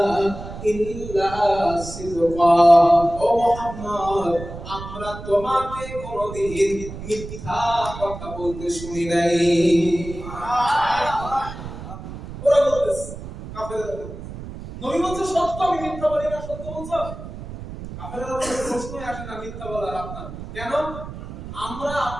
ইল্লা সিদকা, ও মুহাম্মদ আমরা তোমাকে কোনদিন মিথ্যা কথা বলতে শুনি নাই। ওরা বলতেছে, কাফেররা বলতেছে, নবী বলছে সত্য, আমি মিথ্যা বলি না, সত্য বলছো? কাফেররা বলছে প্রশ্নই আসে না মিথ্যা বলার আপনার, কেন? আমরা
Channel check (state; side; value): noise; right; rumble, 11 dB below the sound